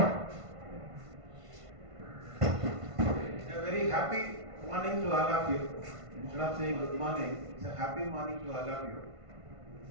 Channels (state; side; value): late; left; 1.5 ms